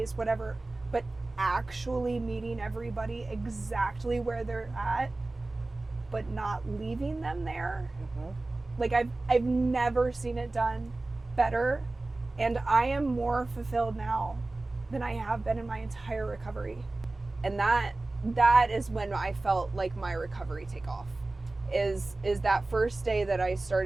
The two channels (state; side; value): quieter; left; 3.0 dB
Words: whatever, but actually meeting everybody exactly where they're at, but not leaving them there. Like, I've never seen it done better, and I am more fulfilled now than I have been in my entire recovery. And that is when I felt like my recovery take off. Is that first day that I